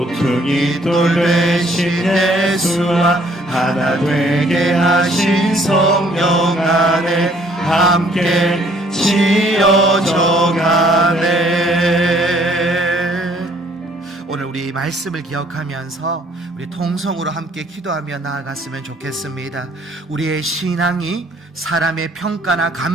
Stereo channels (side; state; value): both; normal; correlation 0.61